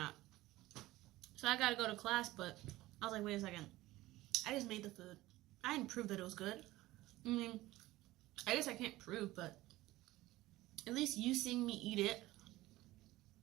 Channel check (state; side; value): quieter; left; 17.5 dB